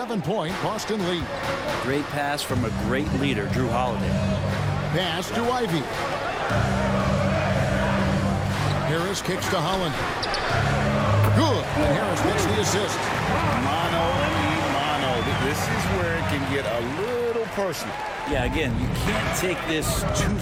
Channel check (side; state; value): both; identical; correlation 1.00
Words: Boston lead. Great pass from a great leader, Drew Holiday. Pass to Ivy. Harris kicks to Holland. Good. And Harris gets the assist. Mano. This is where it can get a little personal. Yeah, again, you can't take this too